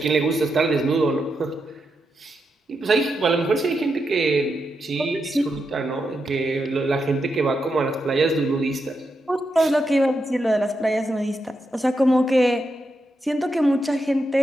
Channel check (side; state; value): both; normal; correlation 0.85